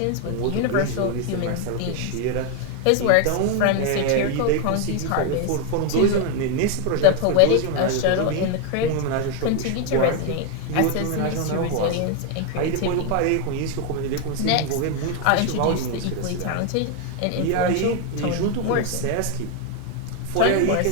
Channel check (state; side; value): different; both; correlation 0.01